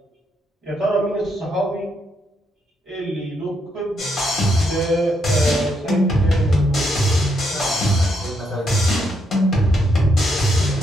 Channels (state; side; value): normal; both; correlation 0.77